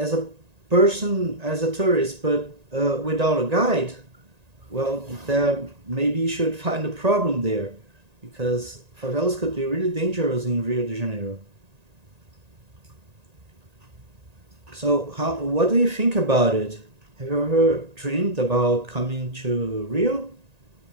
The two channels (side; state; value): left; late; 1.9 ms